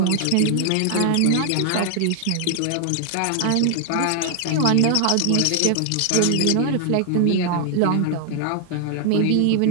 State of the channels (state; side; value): different; both; correlation 0.00